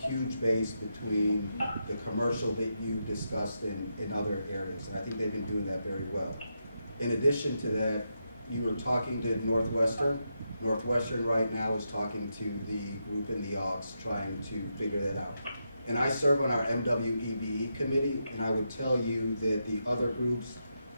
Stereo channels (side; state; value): both; inverted; correlation -0.84